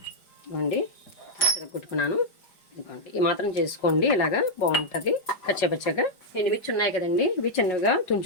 ఇవ్వండి చెతుక్కొట్టుకున్నాను. ఇదిగోండి ఈ మాత్రం చేసుకోండి, ఇలాగా బాగుంటుంది. కచ్చపచ్చగా ఎండుమిర్చి ఉన్నాయి కదండి, ఇవి చిన్నగా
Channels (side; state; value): right; late; 5.0 ms